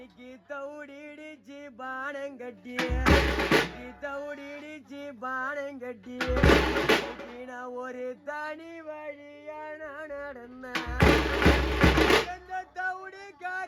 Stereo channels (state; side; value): identical; both; correlation 1.00